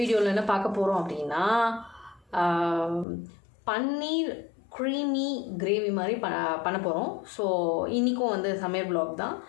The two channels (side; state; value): right; drops out; at 3.1 s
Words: என்ன பார்க்க போகிறோம் அப்படின்னா, பன்னீர் க்ரீமி கிரேவி மாதிரி பண்ண போகிறோம். ஸோ இன்றைக்கும் சமையல் ப்ளாக் தான்.